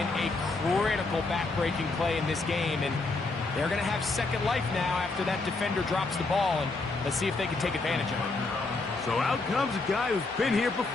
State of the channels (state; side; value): quieter; right; 3.5 dB